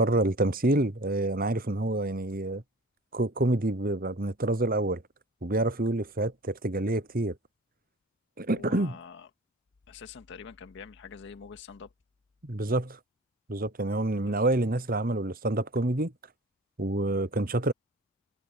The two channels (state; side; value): normal; both; correlation 0.43